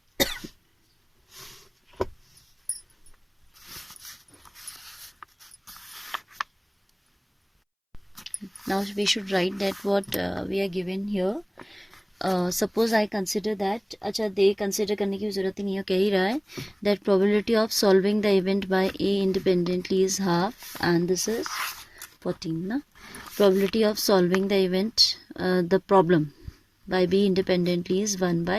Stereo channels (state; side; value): identical; both; correlation 1.00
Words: Now we should write that what we are given here. Suppose I consider that, अच्छा दे consider करने की ज़रूरत ही नहीं है, कह ही रहा है that probability of solving the event by A independently is half and this is 14 ना. Probability of solving the event, the problem by B independently is 1